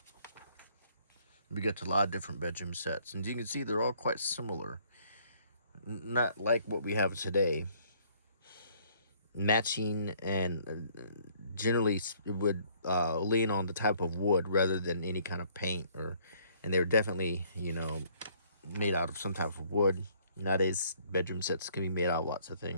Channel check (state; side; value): inverted; both; correlation -0.62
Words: We get to a lot of different bedroom sets, and you can see they're all quite similar. Not like what we have today. Matching, and generally it would lean on the type of wood rather than any kind of paint, and they're definitely, made out of some type of wood. Nowadays, bedroom sets can be made out of lots of